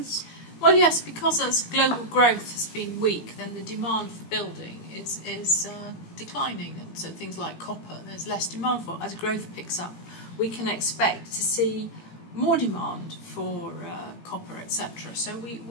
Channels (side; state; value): right; late; 18 ms